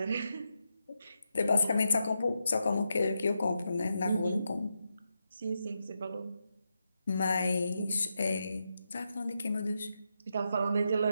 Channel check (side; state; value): both; inverted; correlation -0.85